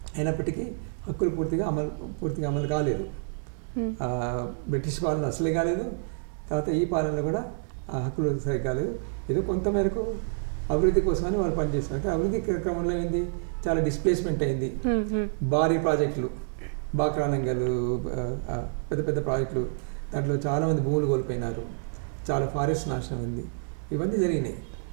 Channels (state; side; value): silent; left; digital silence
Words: అయినప్పటికీ హక్కులు పూర్తిగా అమలు కాలేదు. బ్రిటిష్ పాలన అసలే కాలేదు, తర్వాత ఈ పాలనలో కూడా ఆ హక్కులు సరిగ్గా కాలేదు. ఏదో కొంతమేరకు అభివృద్ధి కోసమని వాళ్ళు పనిచేస్తున్నారు. అభివృద్ధి క్రమంలో ఏంది, చాలా డిస్ప్లేస్మెంట్ అయింది. భారీ ప్రాజెక్టులు, బాక్రానంగలు, పెద్ద పెద్ద ప్రాజెక్టులు, దాంట్లో చాలామంది భూములు కోల్పోయినారు, చాలా ఫారెస్ట్ నాశనం ఉంది. ఇవన్నీ జరిగినాయి.